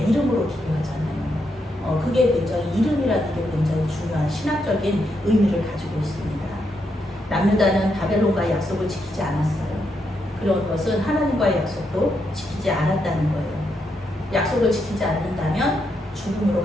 이름으로 기도하잖아요. 그게 굉장히, 이름이라는 게 굉장히 중요한 신학적인 의미를 가지고 있습니다. 남유다는 바벨론과의 약속을 지키지 않았어요. 그런 것은 하나님과의 약속도 지키지 않았다는 거예요. 약속을 지키지 않는다면 죽음으로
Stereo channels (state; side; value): normal; both; correlation 0.80